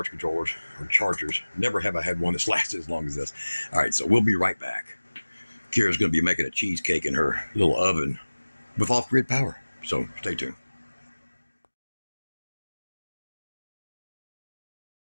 controllers or chargers. Never have I had one that's lasted as long as this. All right, so we'll be right back. Kira's going to be making a cheesecake in her little oven with off-grid power. So stay tuned.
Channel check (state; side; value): inverted; both; correlation -1.00